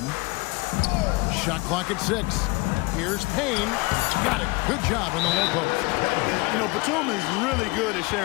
Shot clock at 6. Here's Payne. Got it. Good job in the low post. You know, Batum is really good at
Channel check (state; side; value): quieter; right; 25.2 dB